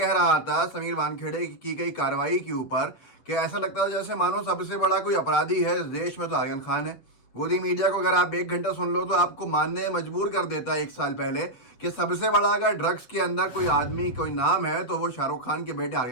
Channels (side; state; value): right; late; 8.2 ms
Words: रहा था समीर वानखेड़े की गई कार्रवाई के ऊपर, कि ऐसा लगता था जैसे मानो सबसे बड़ा कोई अपराधी है इस देश में तो आर्यन खान है। गोदी मीडिया को अगर आप 1 घंटा सुन लो तो आपको मानने मजबूर कर देता है 1 साल पहले कि सबसे बड़ा अगर ड्रग्स के अंदर कोई आदमी कोई नाम है तो वो शाहरुख खान के बेटे